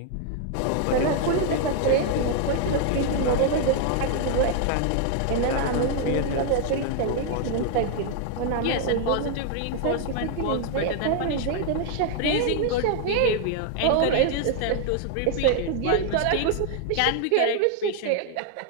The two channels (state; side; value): different; both; correlation 0.00